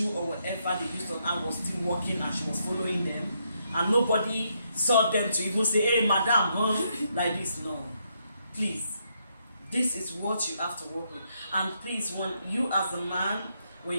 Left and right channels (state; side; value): inverted; both; correlation -0.77